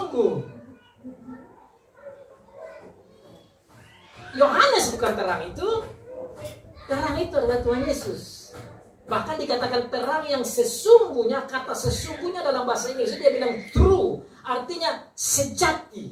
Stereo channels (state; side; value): identical; both; correlation 1.00